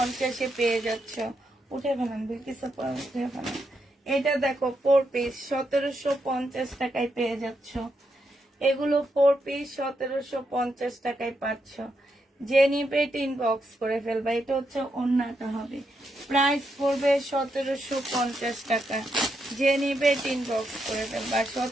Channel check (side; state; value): both; normal; correlation 0.82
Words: পেয়ে যাচ্ছ। উঠে ফেলান বিলকিস আপা, উঠে ফেলান। এটা দেখো 4 পিস 1750 টাকায় পেয়ে যাচ্ছ। এগুলো 4 পিস 1750 টাকায় পাচ্ছ। যে নিবে ইনবক্স করে ফেলবা। এটা হচ্ছে ওড়নাটা হবে, প্রাইস পড়বে 1750 টাকা। যে নিবে ইনবক্স করে ফেলবা,